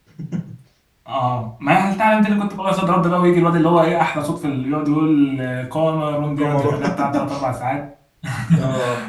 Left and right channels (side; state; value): both; identical; correlation 1.00